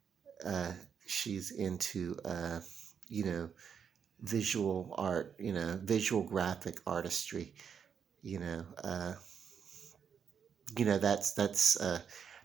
she's into you know visual art, visual graphic artistry. You know, uh,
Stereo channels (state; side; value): quieter; left; 7.3 dB